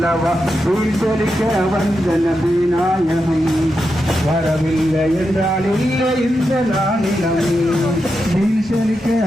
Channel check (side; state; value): both; normal; correlation 0.87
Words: உயிர் சொலிக்க வந்த நபி நாயகம் வரவில்லை என்றால் இல்லை இந்த நாளினம் நீர் சொலிக்க